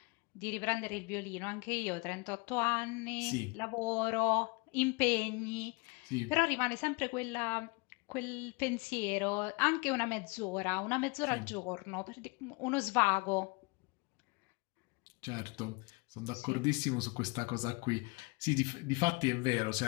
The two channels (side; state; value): right; quieter; 28.5 dB